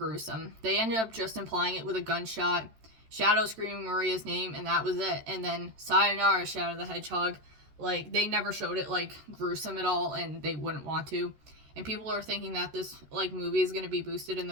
They ended up just implying it with a gunshot, Shadow screaming Maria's name, and that was it. And then sayonara, Shadow the Hedgehog. Like they never showed it like gruesome at all, and they wouldn't want to. And people are thinking that this like movie is going to be boosted in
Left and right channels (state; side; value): late; left; 13 ms